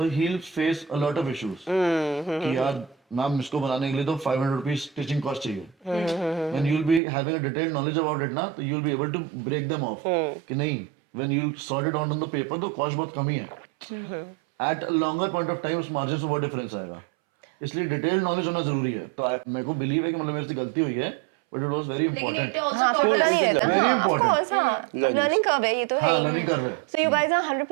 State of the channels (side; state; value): left; drops out; at 7.0 s